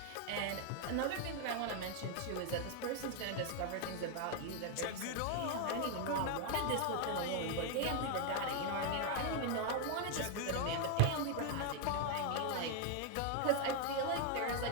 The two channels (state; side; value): different; both; correlation 0.01